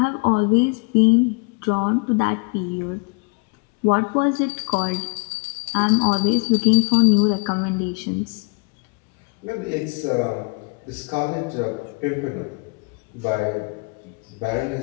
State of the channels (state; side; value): quieter; right; 33.6 dB